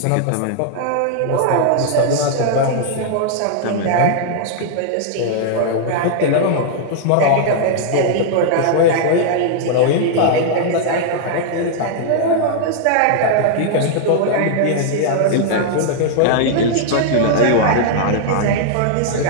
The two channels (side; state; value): both; different; correlation -0.01